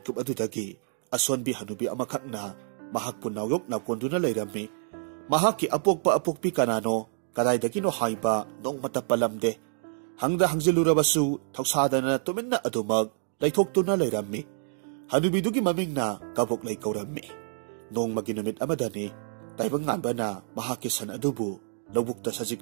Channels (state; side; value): silent; left; digital silence